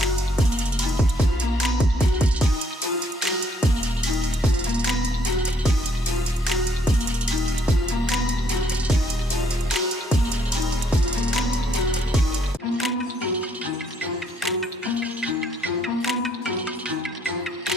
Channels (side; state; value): both; normal; correlation 0.67